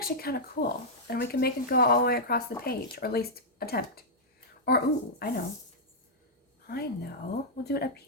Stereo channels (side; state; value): both; normal; correlation -0.08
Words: kind of cool. And we can make it go all the way across the page, or at least attempt. Or, ooh, I know. We'll do it up